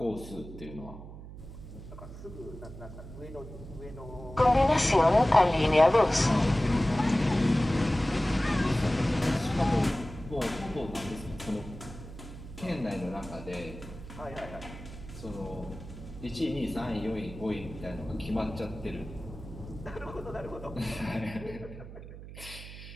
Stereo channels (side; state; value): right; noise; hum, 13 dB below the sound